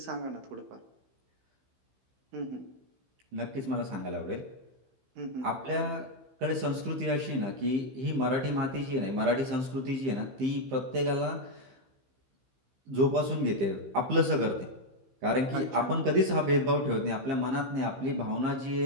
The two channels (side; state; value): left; late; 15 ms